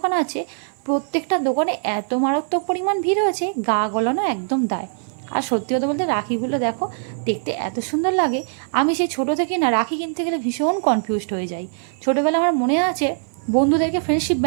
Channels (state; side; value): silent; left; 57 dB below the other